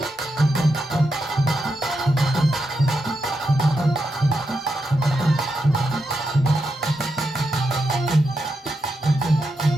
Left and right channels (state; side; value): normal; both; correlation 0.85